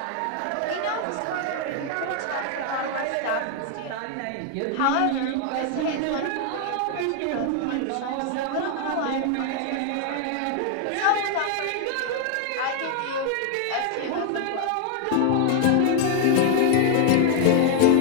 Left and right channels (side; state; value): both; different; correlation 0.00